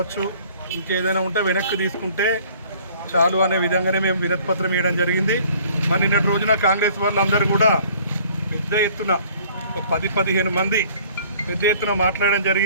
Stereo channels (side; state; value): both; inverted; correlation -0.54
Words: ఇంకేదైనా ఉంటే వెనక్కి తీసుకుంటే చాలు అనే విధంగానే మేము వినతి పత్రం ఇవ్వడం జరిగింది. మరి నిన్నటి రోజున కాంగ్రెస్ వాళ్ళందరూ కూడా పెద్ద ఎత్తున 10-15 మంది పెద్ద ఎత్తున మాట్లాడడం